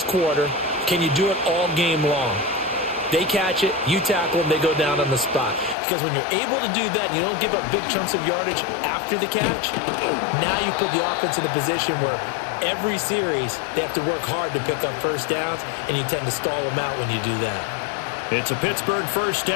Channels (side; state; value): right; drops out; at 5.8 s